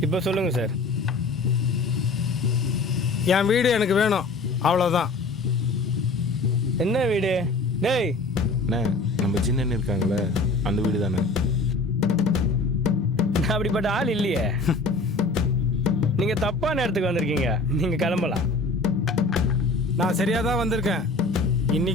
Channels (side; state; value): right; quieter; 3.3 dB